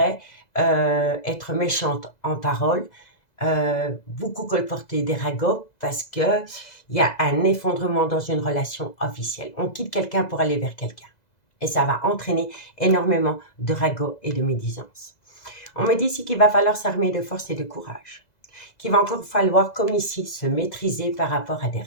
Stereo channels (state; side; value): late; right; 2.0 ms